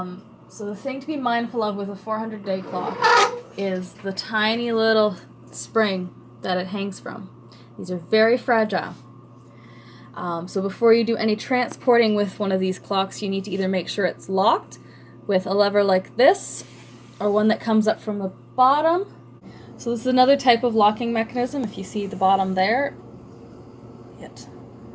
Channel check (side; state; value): both; identical; correlation 1.00